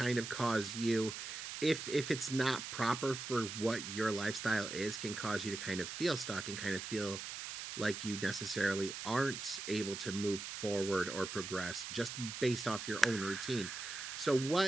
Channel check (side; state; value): right; noise; hiss, 7 dB below the sound